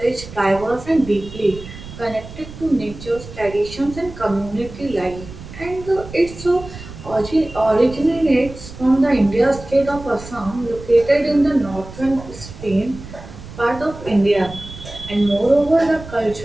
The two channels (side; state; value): right; noise; rumble, 14 dB below the sound